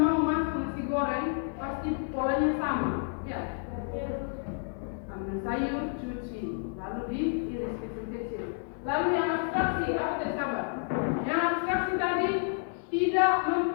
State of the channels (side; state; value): right; silent; 58 dB below the other